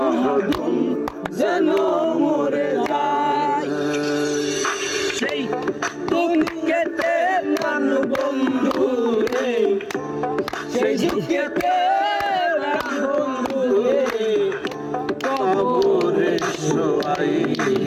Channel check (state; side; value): identical; both; correlation 1.00